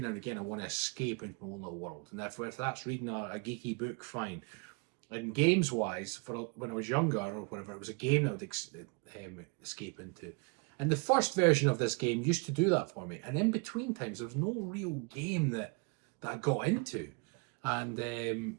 and again I want to escape into my own little world. And if that's reading a geeky book, fine. And games-wise, when I was younger or whatever, it was a game that I would escape into. And the first version of this game used to do that for me. And in between times, there was no real game that I got into. And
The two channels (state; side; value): quieter; left; 32.7 dB